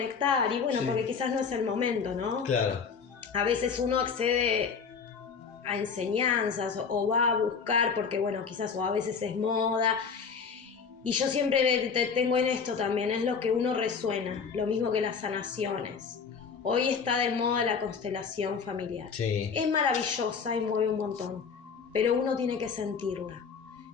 y bueno, Sí. porque quizás no es el momento, ¿no? Claro. A veces uno accede a enseñanzas o va a buscar porque, bueno, quizás o a veces es moda. Y yo siempre tengo en esto también, es lo que uno resuena, lo mismo que las sanaciones. Hoy está de moda la constelación familiar. Sí. Es maravillosa y mueve un montón, pero uno tiene que sentirla.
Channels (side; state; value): right; quieter; 5.8 dB